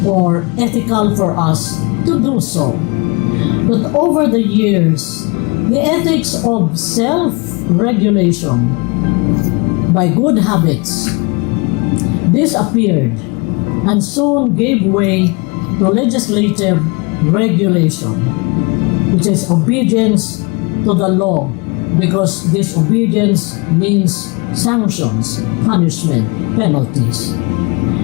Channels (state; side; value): quieter; right; 29.2 dB